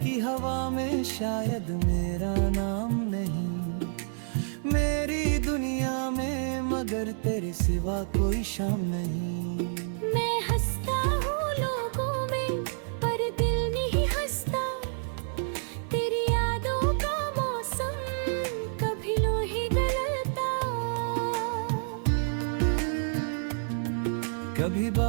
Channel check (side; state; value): left; silent; 58 dB below the other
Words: की हवा में शायद मेरा नाम नहीं, मेरी दुनिया में मगर तेरे सिवा कोई शाम नहीं। मैं हंसता हूँ लोगों में पर दिल नहीं हंसता, तेरी यादों का मौसम कभी लोहे गलता। कभी